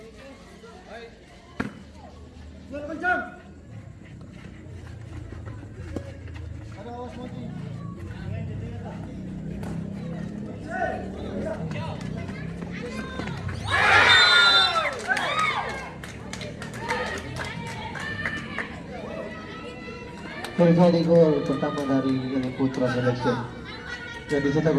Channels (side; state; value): both; identical; correlation 1.00